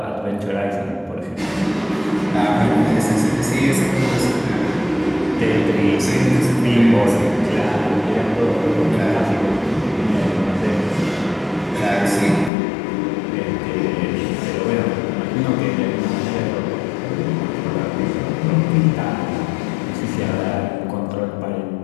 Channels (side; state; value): right; drops out; at 12.5 s